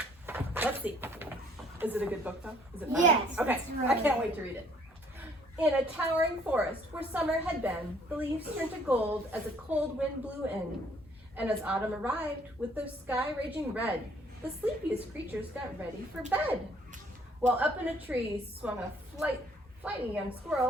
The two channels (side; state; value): both; normal; correlation 0.61